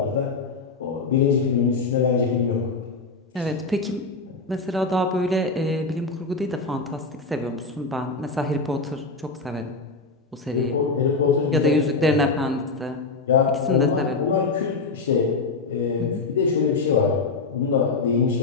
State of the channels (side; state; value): right; quieter; 4.0 dB